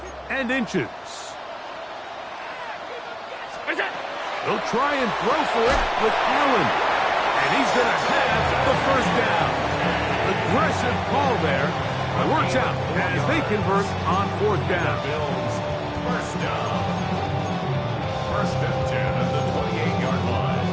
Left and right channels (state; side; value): identical; both; correlation 1.00